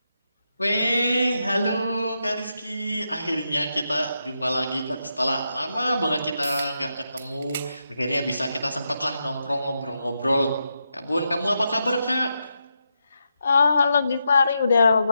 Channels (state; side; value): inverted; both; correlation -0.85